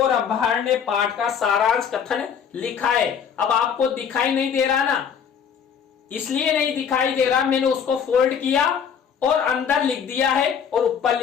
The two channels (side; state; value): right; quieter; 7.4 dB